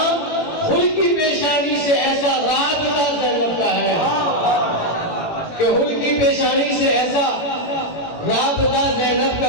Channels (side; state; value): right; late; 18 ms